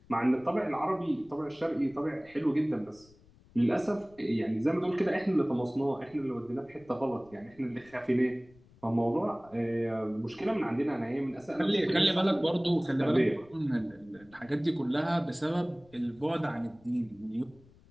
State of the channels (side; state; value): left; noise; rumble, 27 dB below the sound